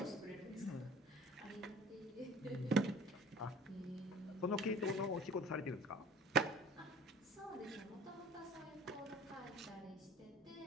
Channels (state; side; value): normal; both; correlation 0.46